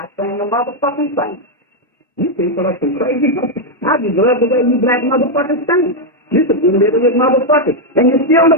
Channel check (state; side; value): normal; both; correlation 0.00